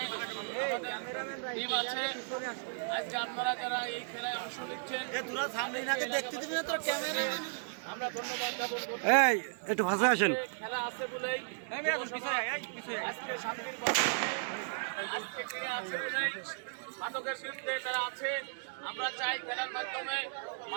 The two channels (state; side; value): silent; left; digital silence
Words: আমাদের টিম আছে। আজকে আপনারা যারা এই খেলায় অংশ নিচ্ছেন আমরা ধন্যবাদ জ্ঞাপন করছি। একটু ভাষা আসেন। খেলা আছে বলেই আজকে শান্তির আজকে ক্রীড়া আছে বলেই মাদকের বিরুদ্ধে তারা আছে। আমরা চাই খেলার মাধ্যমে